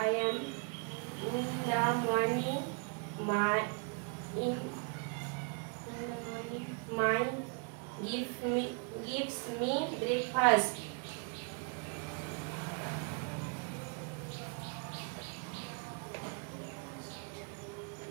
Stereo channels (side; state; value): left; quieter; 36.1 dB